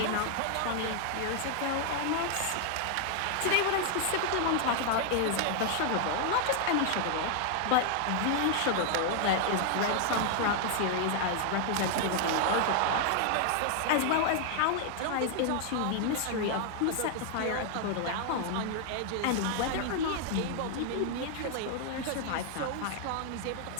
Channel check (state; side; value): different; both; correlation 0.00